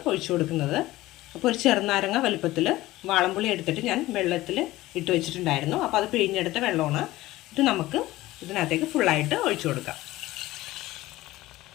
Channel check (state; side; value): quieter; right; 17.3 dB